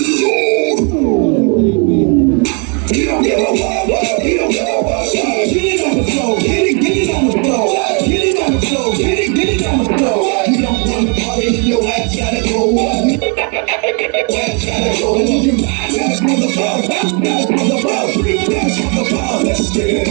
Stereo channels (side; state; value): left; quieter; 36.6 dB